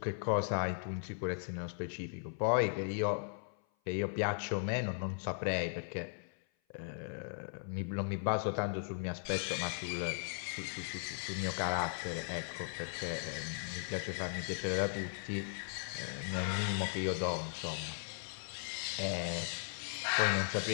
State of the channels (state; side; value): silent; right; 53 dB below the other